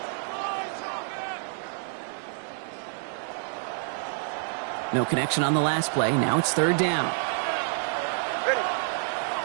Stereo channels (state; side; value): silent; left; 59 dB below the other